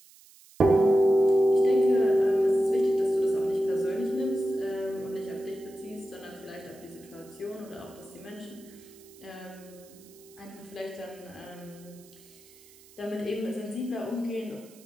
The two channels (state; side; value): noise; right; hiss, 25 dB below the sound